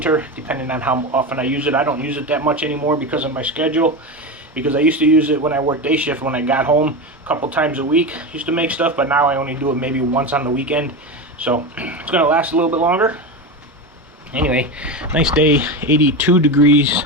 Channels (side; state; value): both; normal; correlation 0.20